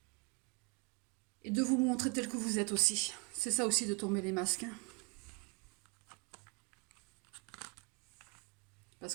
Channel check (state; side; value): quieter; left; 31.3 dB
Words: Et de vous montrer tel que vous êtes aussi. C'est ça aussi de tomber les masques, hein. Parce